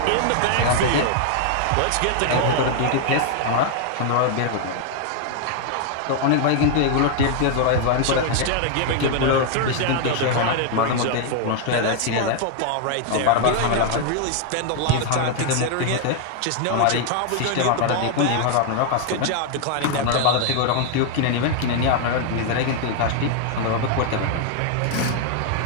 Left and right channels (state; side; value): different; both; correlation 0.00